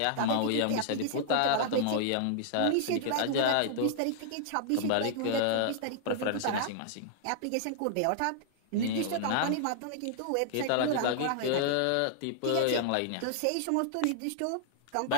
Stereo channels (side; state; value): both; different; correlation -0.01